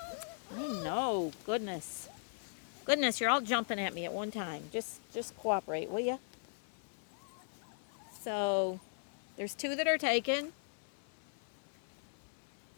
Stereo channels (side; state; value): right; silent; 52 dB below the other